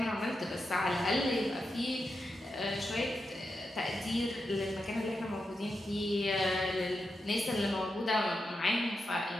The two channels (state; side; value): normal; both; correlation 0.87